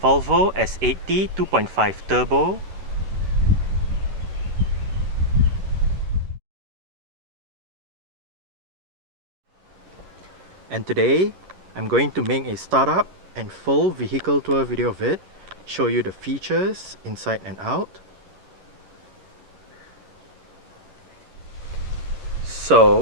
Volvo S80 2.5 Turbo. And today I'm going to make a startup and full vehicle tour video of it, show you the features inside and out.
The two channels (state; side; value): late; left; 11 ms